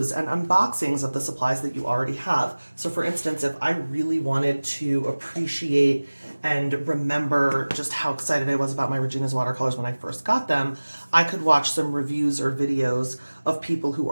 and unboxings of the supplies that you already have. So for instance, if I really wanted to appreciate and remember just how excited I was about my Regina's watercolors when I first got them, I could watch some reviews or videos of people who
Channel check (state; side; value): inverted; both; correlation -1.00